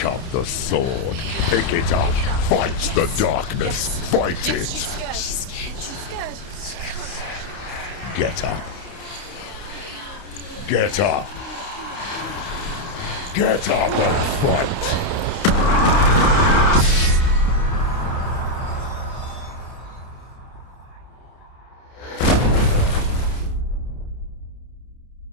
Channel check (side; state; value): right; late; 30 ms